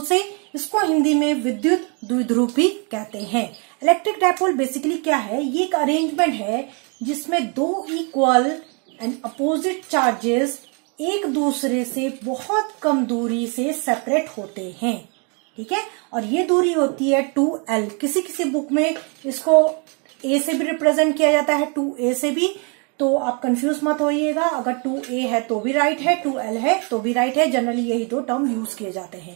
से। इसको हिंदी में विद्युत द्विध्रुव भी कहते हैं। इलेक्ट्रिक डायपोल बेसिकली क्या है? ये एक अरेंजमेंट है जिसमें दो इक्वल एंड अपोजिट चार्जेस एक दूसरे से बहुत कम दूरी से सेपरेट होते हैं। ठीक है, और ये दूरी होती है 2L। किसी किसी बुक में इसको A से भी रिप्रेजेंट किया जाता है, 2A से भी, तो आप कंफ्यूज मत होइएगा। अगर 2A है तो भी राइट है, 2L है तो भी राइट है। जनरली यही दो टर्म यूज किए जाते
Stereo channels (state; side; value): quieter; left; 35.7 dB